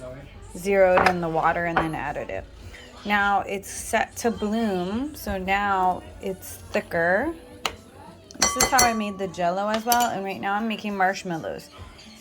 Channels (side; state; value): both; identical; correlation 1.00